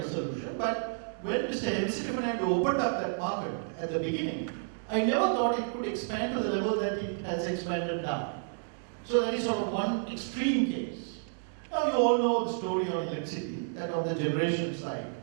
of solution, but when Mr. Hemsittimanand opened up that market at the beginning, I never thought it could expand to the level that it has expanded now. So that is sort of one extreme case. Now you all know the story on electricity, that on the generation side,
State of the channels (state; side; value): silent; left; digital silence